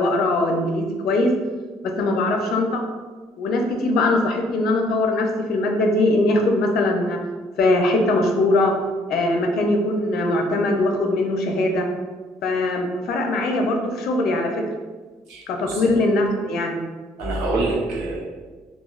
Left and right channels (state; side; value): normal; both; correlation 0.63